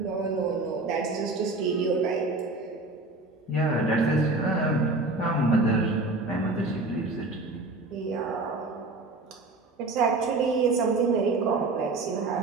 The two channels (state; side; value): quieter; left; 3.2 dB